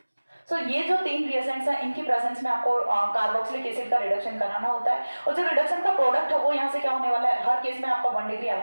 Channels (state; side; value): inverted; both; correlation -1.00